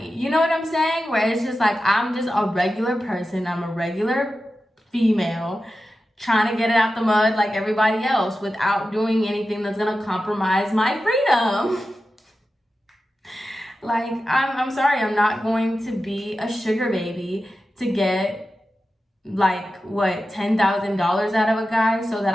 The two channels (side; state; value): both; normal; correlation 0.92